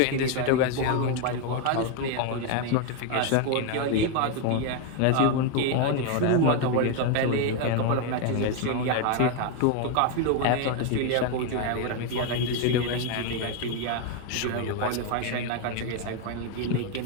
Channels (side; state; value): both; different; correlation 0.01